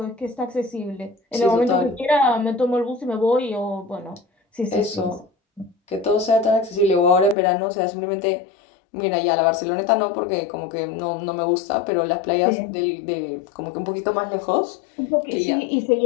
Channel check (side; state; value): right; drops out; at 7.4 s